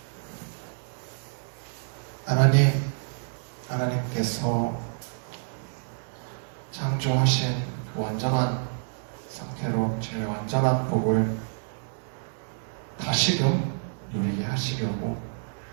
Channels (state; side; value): silent; left; digital silence